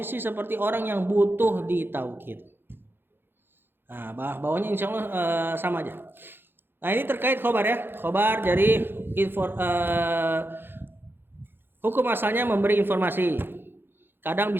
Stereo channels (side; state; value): left; late; 0.10 ms